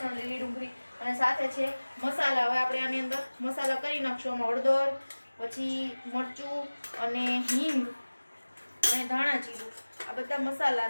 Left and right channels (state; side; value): inverted; both; correlation -1.00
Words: ડુંગળી અને સાથે છે મસાલા। હવે આપણે આની અંદર મસાલા કરી નાખશું। આમાં હળદર, પછી મરચું અને હિંગ અને ધાણા જીરું, આ બધા મસાલા